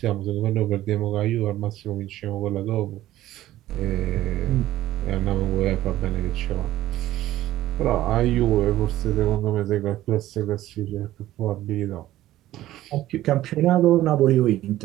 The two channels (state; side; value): quieter; left; 14.6 dB